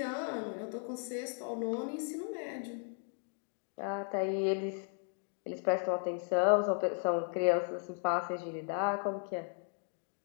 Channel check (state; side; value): silent; right; 54 dB below the other